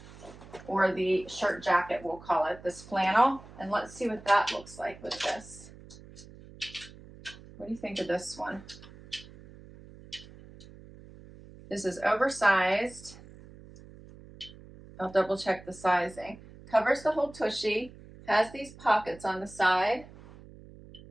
or the shirt jacket, we'll call it, this flannel. And let's see what that looks like with this. What do you think of this one? This is oversized. I'll double check the sizing. Covers the whole tushy, has these pockets on the side.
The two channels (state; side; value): noise; right; hum, 19 dB below the sound